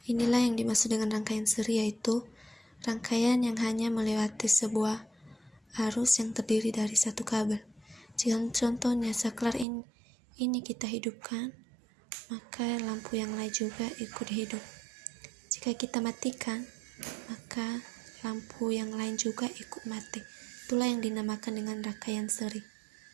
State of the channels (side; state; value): left; drops out; at 9.7 s